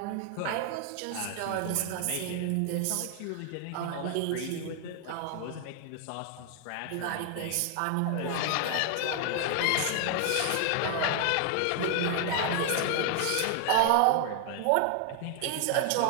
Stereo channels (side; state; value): both; different; correlation 0.00